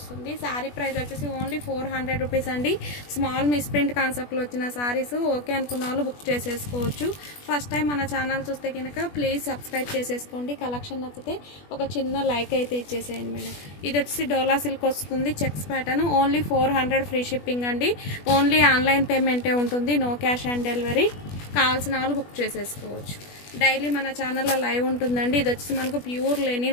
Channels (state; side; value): late; right; 20 ms